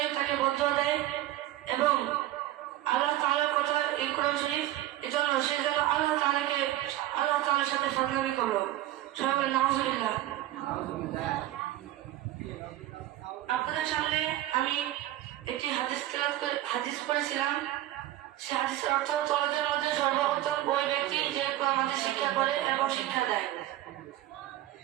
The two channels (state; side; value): quieter; left; 14.4 dB